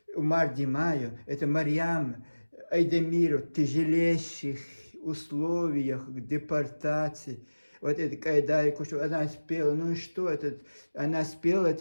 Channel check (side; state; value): both; inverted; correlation -1.00